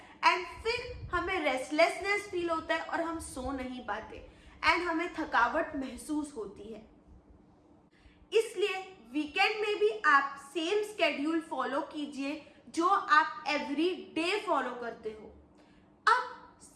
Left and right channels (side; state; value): both; identical; correlation 1.00